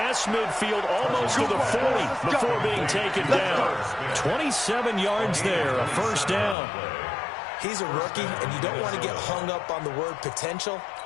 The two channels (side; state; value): right; drops out; at 6.6 s